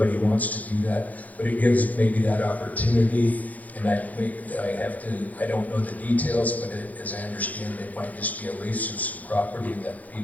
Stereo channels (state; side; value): late; right; 0.077 ms